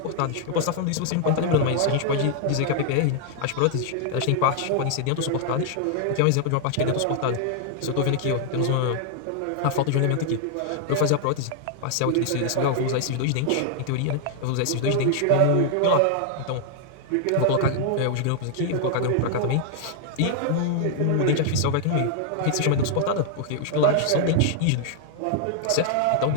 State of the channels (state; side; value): different; both; correlation 0.00